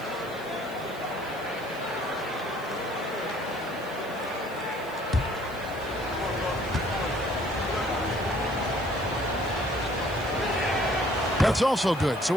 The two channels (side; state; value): right; noise; hiss, 21 dB below the sound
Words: That's also good, so